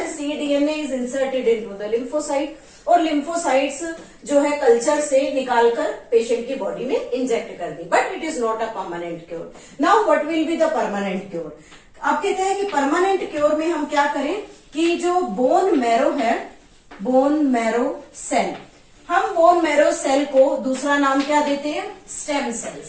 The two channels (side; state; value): both; identical; correlation 1.00